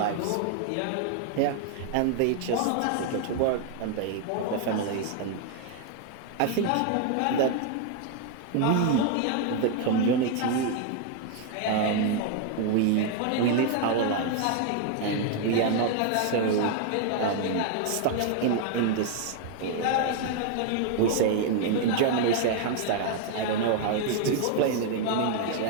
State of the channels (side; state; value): both; different; correlation 0.00